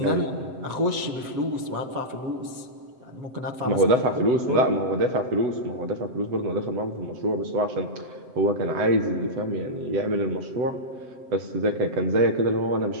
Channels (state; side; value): late; left; 7.8 ms